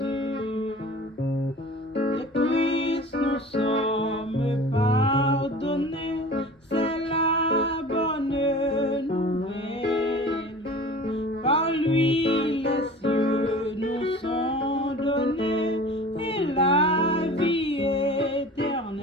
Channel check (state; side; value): normal; both; correlation 0.41